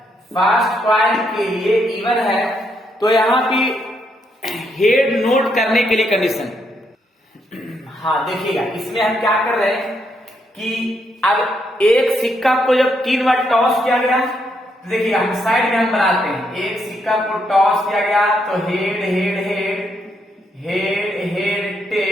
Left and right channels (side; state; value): both; normal; correlation 0.77